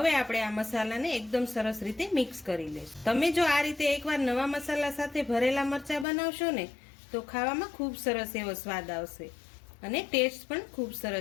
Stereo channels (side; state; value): right; drops out; at 6.1 s